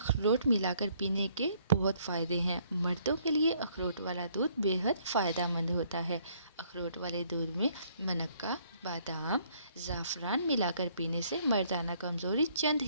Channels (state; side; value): inverted; both; correlation -0.65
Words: ملا کر پینے کے بہت فائدے ہیں۔ مردوں کے لیے اخروٹ والا دودھ بے حد فائدہ مند ہوتا ہے۔ اخروٹ والے دودھ میں منقہ، بادام، زعفران ملا کر پینے سے مردانہ کمزوری چند